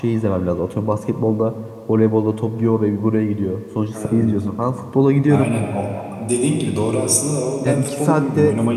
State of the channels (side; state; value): both; identical; correlation 1.00